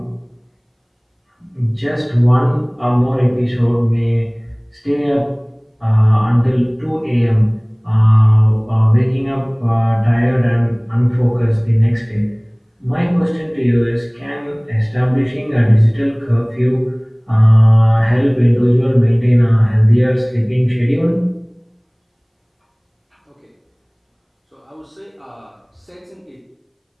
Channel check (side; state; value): both; identical; correlation 1.00